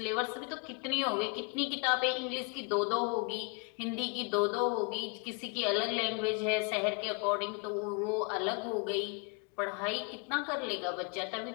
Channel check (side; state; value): right; quieter; 33.1 dB